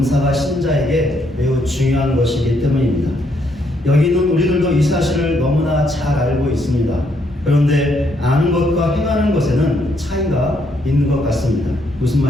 신자에게 매우 중요한 것이기 때문입니다. 여기는 우리들도 이 사실을 너무나 잘 알고 있습니다. 그런데 아는 것과 행하는 것에는 차이가 있는 것 같습니다. 무슨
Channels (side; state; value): both; normal; correlation 0.73